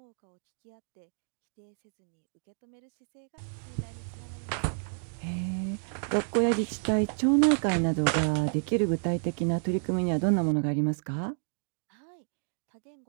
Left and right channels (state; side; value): silent; left; digital silence